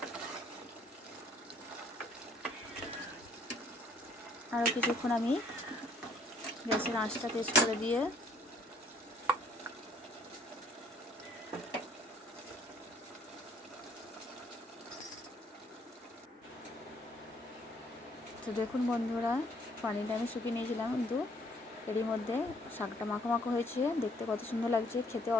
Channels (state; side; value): normal; both; correlation 0.62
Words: আরও কিছুক্ষণ আমি গ্যাসের আঁচটা তেজ করে দিয়ে তো দেখুন বন্ধুরা, পানিটা আমি শুকিয়ে নিয়েছিলাম, কিন্তু এরই মধ্যে শাকটা মাখো মাখো হয়েছে, দেখতে কত সুন্দর লাগছে, খেতে